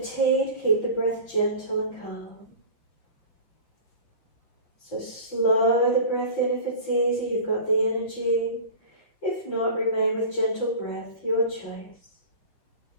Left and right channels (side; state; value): right; late; 6.0 ms